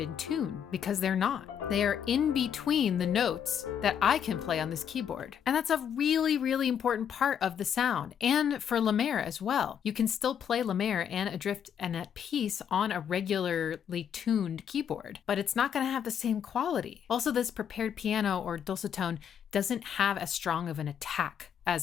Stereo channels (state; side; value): quieter; right; 8.4 dB